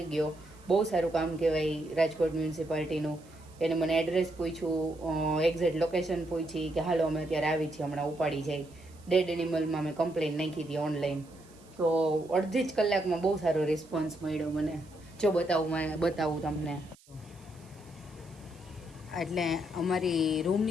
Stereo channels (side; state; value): right; noise; hiss, 27 dB below the sound